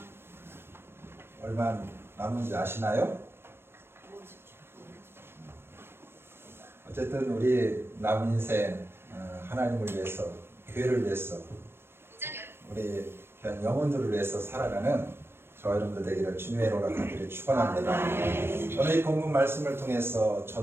얼마 남은지 아시나요? 어쨌든 우리 남은 인생 하나님을 위해서, 교회를 위해서, 우리 그냥 영혼들을 위해서 살아가는 저와 여러분들 되기를 주님의 이름으로 간절히 축원합니다. 오늘 이 본문 말씀을 통해서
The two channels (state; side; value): late; left; 0.12 ms